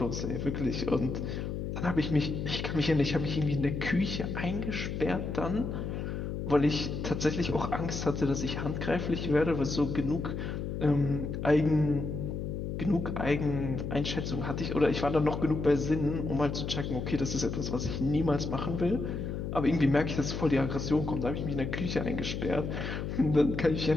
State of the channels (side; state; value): left; noise; hum, 4 dB below the sound